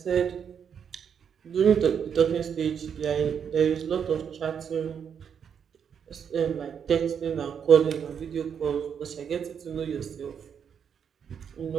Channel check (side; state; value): left; quieter; 7.6 dB